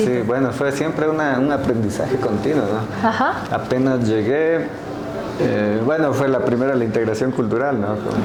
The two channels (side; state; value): both; identical; correlation 1.00